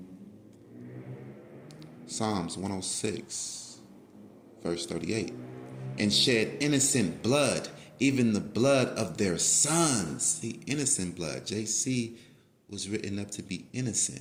Psalms 106, verse 38. And shed innocent blood, even the blood of their sons. The innocent blood. JC was written up to be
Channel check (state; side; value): identical; both; correlation 1.00